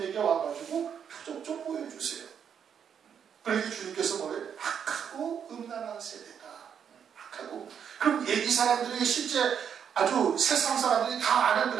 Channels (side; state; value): left; quieter; 7.9 dB